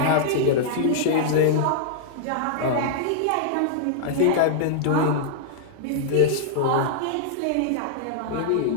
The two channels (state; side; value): different; both; correlation -0.01